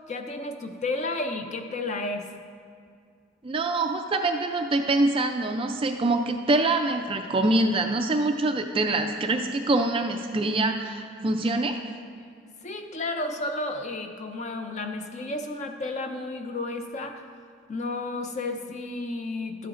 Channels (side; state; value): both; normal; correlation 0.44